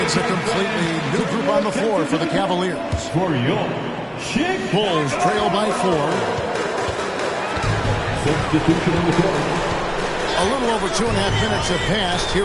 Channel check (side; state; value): both; identical; correlation 1.00